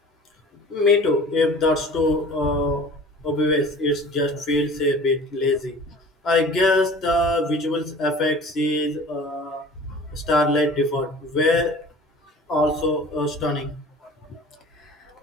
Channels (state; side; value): normal; both; correlation 0.44